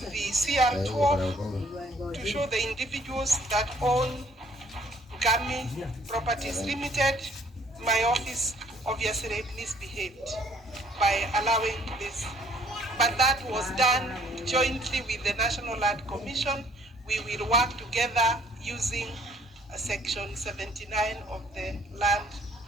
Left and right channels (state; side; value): normal; both; correlation 0.60